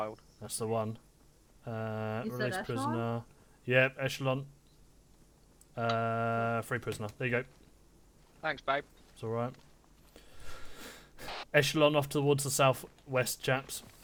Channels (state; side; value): identical; both; correlation 1.00